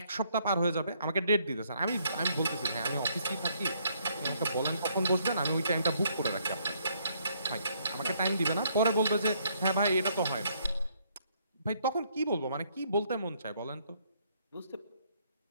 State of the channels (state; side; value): inverted; both; correlation -0.69